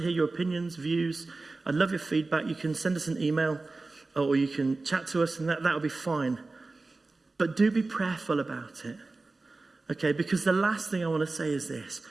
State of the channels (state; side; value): quieter; left; 3.5 dB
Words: hear your opinions, views. I'd love your feedback. You can send us an email, or you can chat to us, and that'll be fine. But do be prayerful about it, okay? Because the last thing I want to say is this.